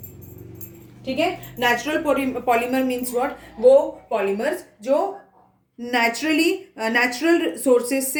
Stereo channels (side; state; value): both; identical; correlation 1.00